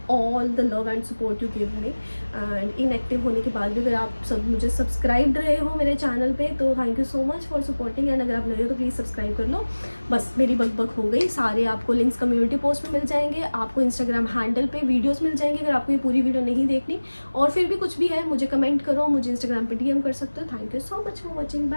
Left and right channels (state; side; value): inverted; both; correlation -1.00